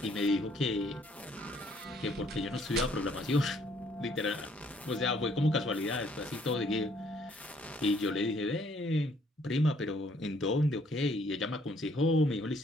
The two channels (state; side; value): normal; both; correlation 0.65